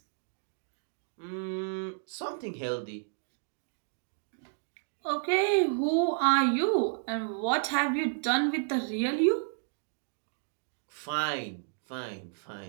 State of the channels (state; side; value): silent; left; digital silence